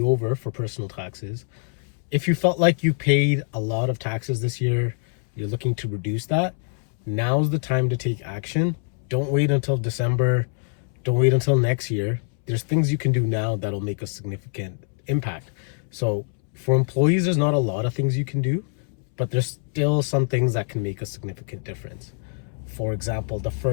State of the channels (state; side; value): silent; right; 62 dB below the other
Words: over for personal taxes. If you felt like you paid a lot of taxes this year, you're looking to reduce that, now's the time to take action. Don't wait until December. Don't wait until next year. There's things you can do now that'll make a significant impact. So for employees, there's not a lot of things you can do, but there's still some things that can make a significant difference. For example, the